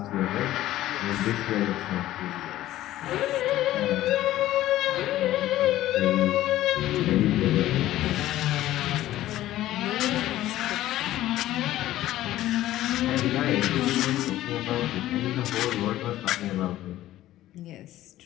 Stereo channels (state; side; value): quieter; right; 14.5 dB